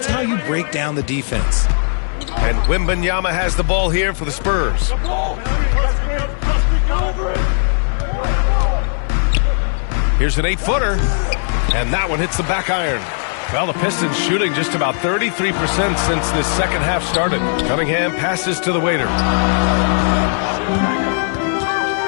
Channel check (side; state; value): right; silent; 68 dB below the other